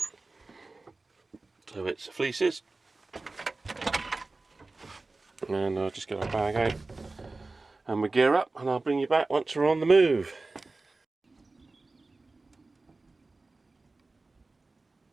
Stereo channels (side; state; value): left; quieter; 3.4 dB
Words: so it's fleeces, and I'll just get our bag out and we gear up, and I'll bring you back once we're on the move.